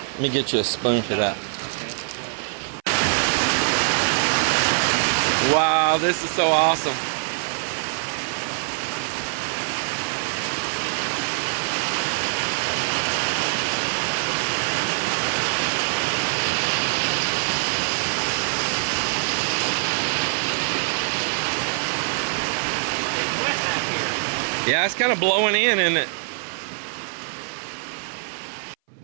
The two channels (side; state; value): left; silent; 59 dB below the other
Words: Let me get you a spoon for that. Wow, this is so awesome. Yeah, it's kind of blowing in, isn't it?